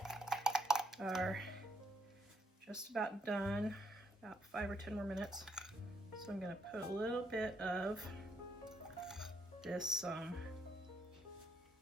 are just about done, about 5 or 10 more minutes. So I'm gonna put a little bit of this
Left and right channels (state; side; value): normal; both; correlation 0.75